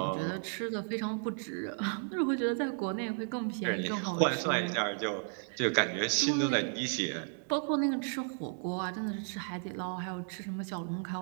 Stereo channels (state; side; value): silent; left; 55 dB below the other